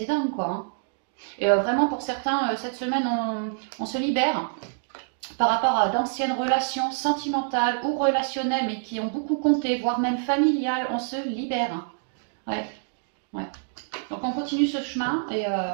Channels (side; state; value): left; silent; digital silence